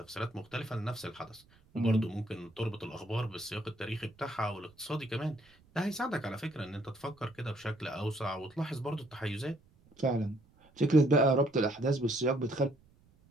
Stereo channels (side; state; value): right; noise; rumble, 29 dB below the sound